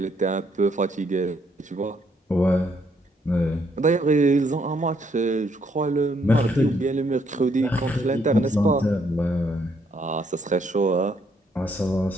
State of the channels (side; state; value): both; normal; correlation 0.71